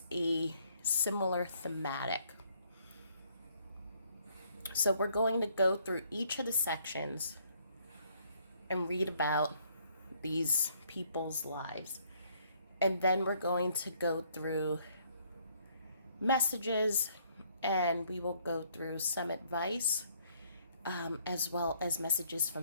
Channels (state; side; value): inverted; both; correlation -0.66